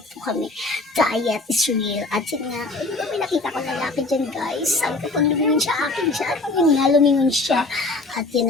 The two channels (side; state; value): right; quieter; 3.2 dB